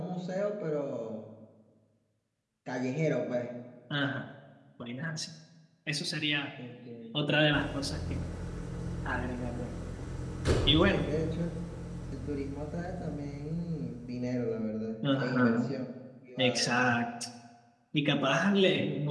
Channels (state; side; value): identical; both; correlation 1.00